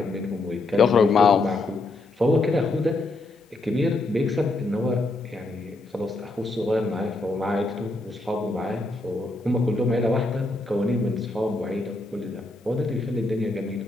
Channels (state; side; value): quieter; right; 3.0 dB